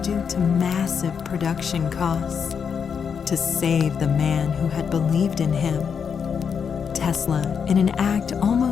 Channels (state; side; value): quieter; right; 6.7 dB